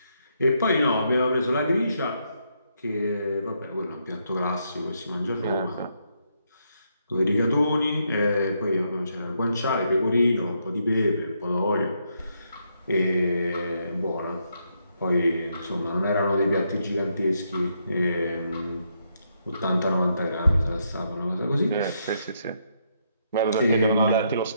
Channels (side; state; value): both; inverted; correlation -0.77